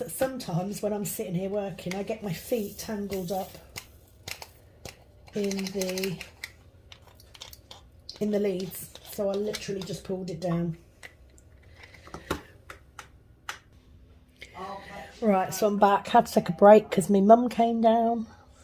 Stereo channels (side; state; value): both; identical; correlation 1.00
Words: sometimes when I'm sitting here working, I get my feet tangled up in the leads. So I literally just pulled it down. Right, so I'm back. Had to take a break because my mum came down.